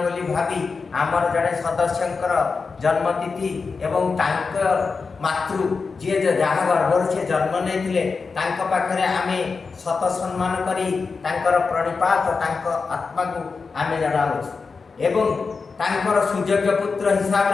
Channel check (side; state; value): right; quieter; 4.7 dB